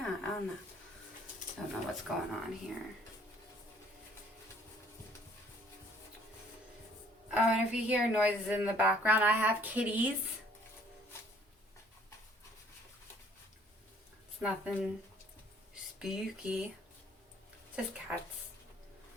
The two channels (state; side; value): normal; both; correlation 0.59